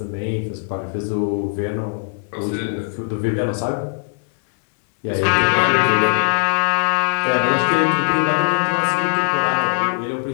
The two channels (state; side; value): silent; right; 63 dB below the other